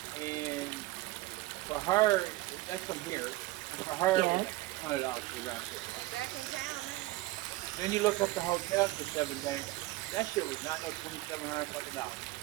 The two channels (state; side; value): quieter; left; 18.8 dB